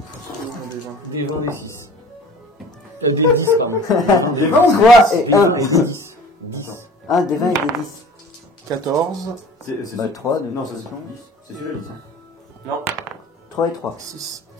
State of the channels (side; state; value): both; normal; correlation 0.44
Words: des 20, des 6. Des 10, pardon. J'ai 20 ou 3 et 1. 10. 1 des 20 et des 10. 14, C'est Bah 3 de Non, toute ça c'est façon. 10. C'est celui-là, 10. Non. 3 et 3. 6,